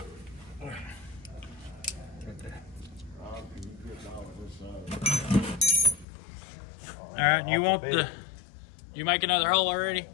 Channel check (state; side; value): drops out; right; at 6.1 s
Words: All right, you want the? You make another hole already?